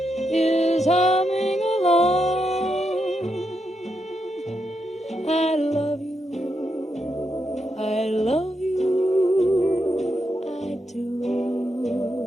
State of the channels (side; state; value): both; normal; correlation 0.83